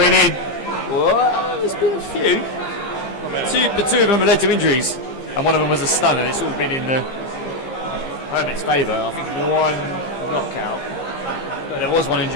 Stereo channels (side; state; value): right; late; 15 ms